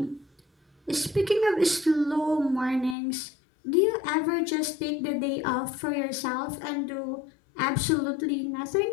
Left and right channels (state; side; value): drops out; right; at 3.0 s